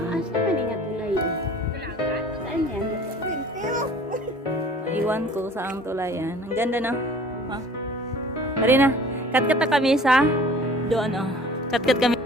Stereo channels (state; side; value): normal; both; correlation 0.48